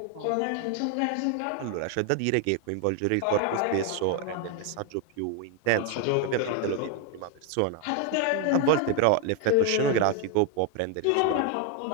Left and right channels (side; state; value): both; different; correlation 0.01